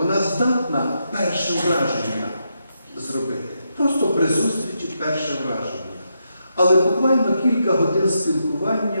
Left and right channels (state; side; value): inverted; both; correlation -0.83